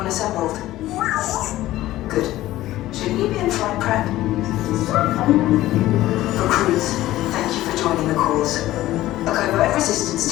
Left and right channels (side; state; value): right; quieter; 15.5 dB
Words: assembled? Good. Should you be in flight prep? Recruits, thank you for joining the cause. A covert